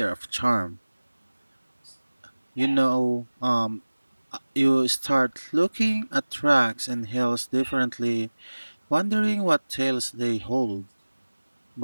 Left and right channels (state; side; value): inverted; both; correlation -1.00